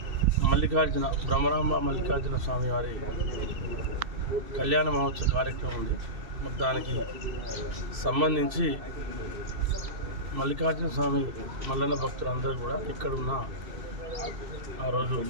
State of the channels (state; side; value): late; left; 2.7 ms